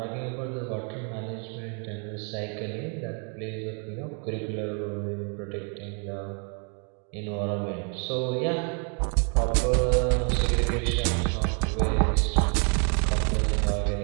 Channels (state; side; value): quieter; left; 38.7 dB